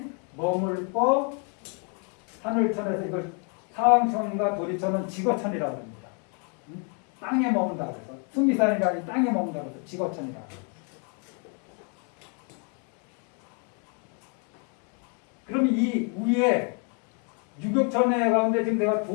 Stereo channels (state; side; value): quieter; right; 38.8 dB